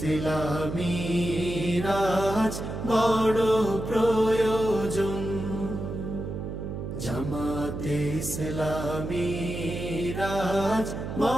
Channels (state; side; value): noise; right; hum, 6 dB below the sound